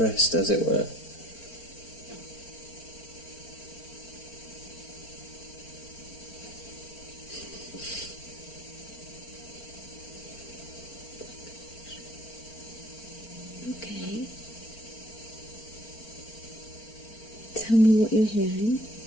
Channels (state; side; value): late; right; 4.4 ms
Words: as it were. Okay. Tell me what you're hearing.